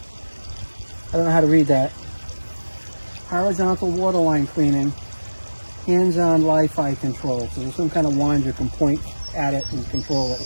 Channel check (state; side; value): inverted; both; correlation -1.00